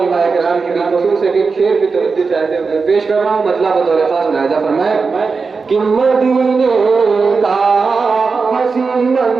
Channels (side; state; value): left; quieter; 4.7 dB